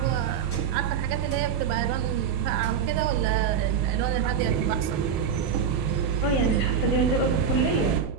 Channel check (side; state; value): left; quieter; 7.1 dB